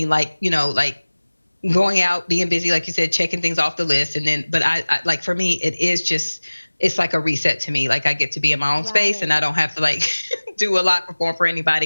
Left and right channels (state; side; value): inverted; both; correlation -1.00